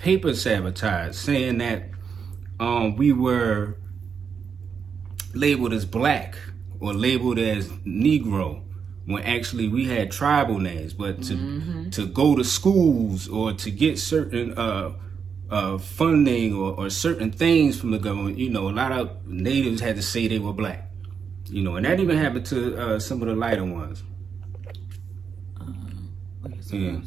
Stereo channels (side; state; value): left; quieter; 6.5 dB